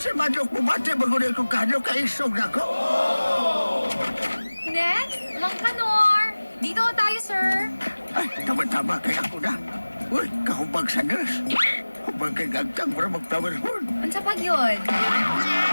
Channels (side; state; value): both; inverted; correlation -1.00